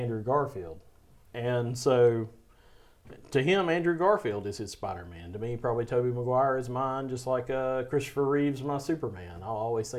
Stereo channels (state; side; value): identical; both; correlation 1.00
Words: Garfield. And so to him, Andrew Garfield is his Spider-Man. To me, probably Tobey Maguire is mine, just like Christopher Reeve's my Superman. I'll always